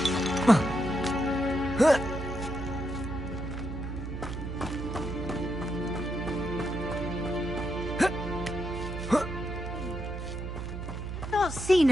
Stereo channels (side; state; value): right; noise; hum, 6 dB below the sound